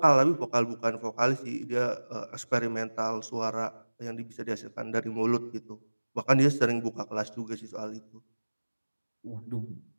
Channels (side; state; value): both; inverted; correlation -1.00